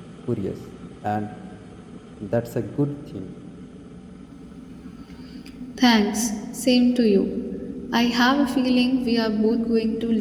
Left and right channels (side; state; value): both; identical; correlation 1.00